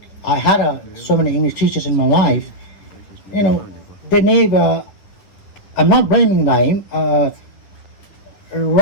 I had so many English teachers in my life, they never, I'm not blaming them,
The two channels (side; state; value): right; late; 9.9 ms